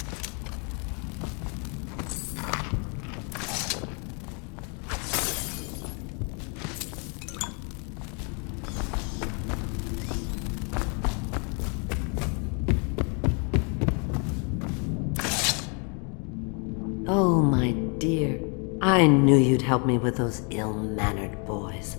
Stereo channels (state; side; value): quieter; right; 36.5 dB